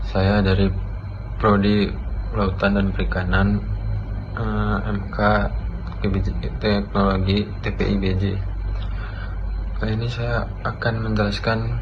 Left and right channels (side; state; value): both; identical; correlation 1.00